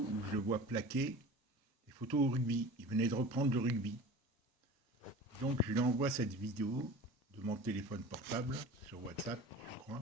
où je le vois plaquer, des photos au rugby. Il venait de reprendre le rugby. Donc je lui envoie cette vidéo de mon téléphone portable sur WhatsApp, je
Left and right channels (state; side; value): normal; both; correlation 0.38